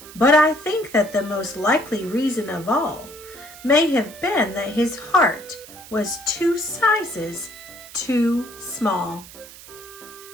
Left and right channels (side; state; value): right; noise; hiss, 18 dB below the sound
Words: But I think that the most likely reason of all may have been that his heart was 2 sizes too small.